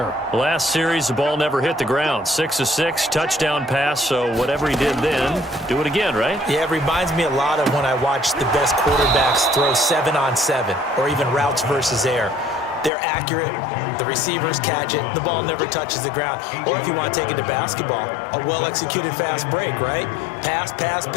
Last series, the ball never hit the ground. 6 of 6, touchdown pass, so whatever he did then, do it again, right? Yeah, it reminds me a lot of when I watch the best quarterbacks throw 7-on-7 or even routes versus air. They're accurate, the receivers catch it, the ball never touches the ground. Or if you want to take it to basketball, a well-executed fast break, right? Pass, pass,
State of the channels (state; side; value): drops out; right; at 12.9 s